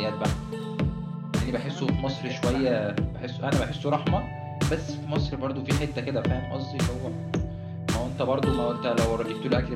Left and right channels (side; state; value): both; identical; correlation 1.00